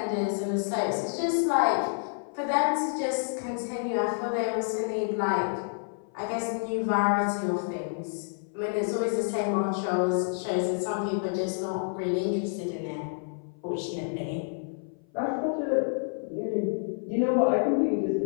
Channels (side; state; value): right; silent; 56 dB below the other